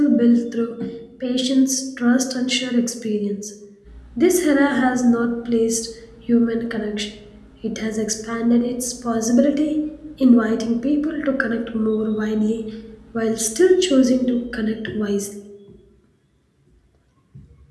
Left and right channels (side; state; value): both; identical; correlation 1.00